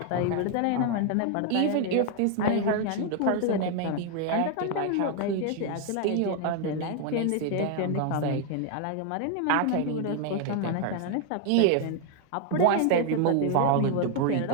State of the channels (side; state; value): both; different; correlation 0.00